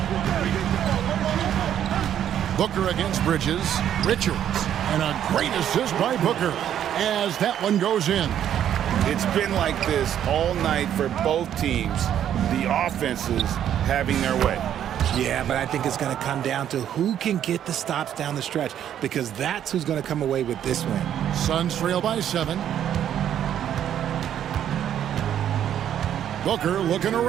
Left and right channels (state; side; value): quieter; left; 10.2 dB